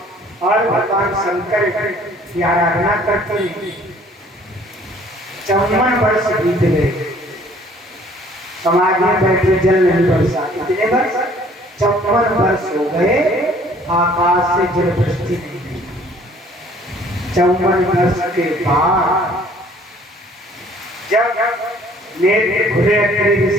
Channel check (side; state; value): both; normal; correlation 0.56